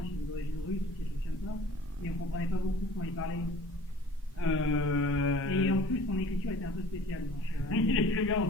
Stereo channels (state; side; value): normal; both; correlation 0.47